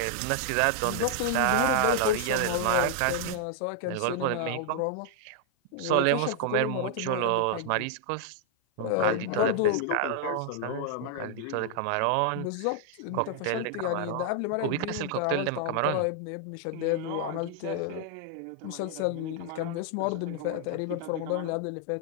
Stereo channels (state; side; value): different; both; correlation 0.00